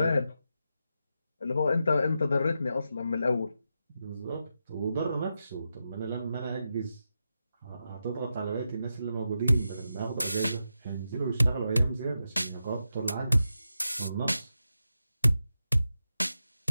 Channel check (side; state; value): both; inverted; correlation -0.88